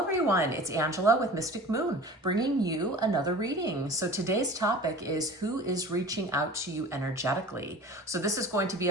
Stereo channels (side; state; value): both; normal; correlation 0.40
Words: everyone. It's Angela with Mystic Moon, bringing you another reading. So today's topic is who is reaching out to you energetically. So this is going to be